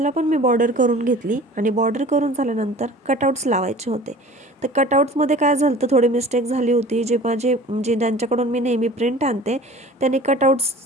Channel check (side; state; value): both; normal; correlation 0.44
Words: पण मी बॉर्डर करून घेतली आणि बॉर्डर करून झाल्यानंतर कटआउट्स लावायचे होते. तर कटआउट्समध्ये काय झालं तर थोडी मिस्टेक झाली होती. जे ज्यांच्याकडून मी नेहमी प्रिंट आणते त्यांनी